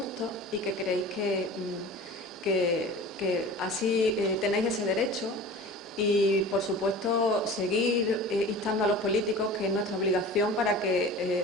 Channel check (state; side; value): normal; both; correlation 0.38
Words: y que creéis que así tenéis ese derecho Y, por supuesto, seguir instando a los políticos, que es nuestra obligación, para